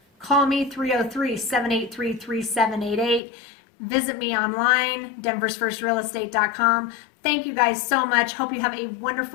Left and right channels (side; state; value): right; drops out; at 3.2 s